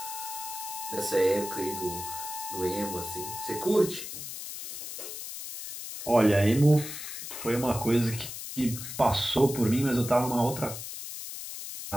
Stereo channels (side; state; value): left; noise; hiss, 8 dB below the sound